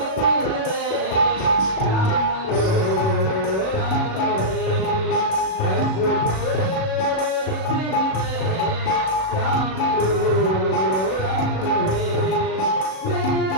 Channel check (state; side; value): late; right; 37 ms